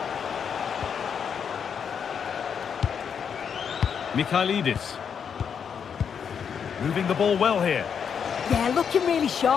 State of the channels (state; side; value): quieter; right; 7.2 dB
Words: Mikhailidis. Moving the ball well here. Yeah, looking really